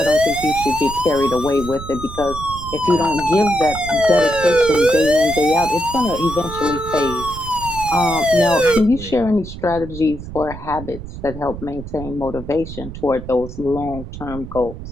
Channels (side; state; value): right; noise; rumble, 11 dB below the sound